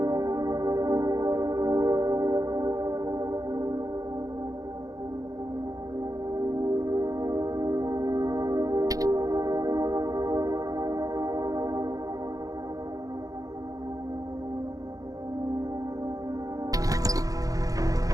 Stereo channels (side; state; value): left; late; 0.17 ms